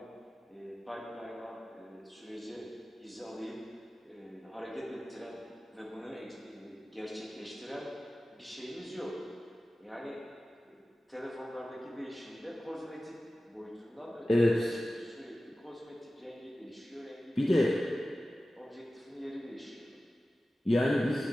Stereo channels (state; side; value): normal; both; correlation 0.95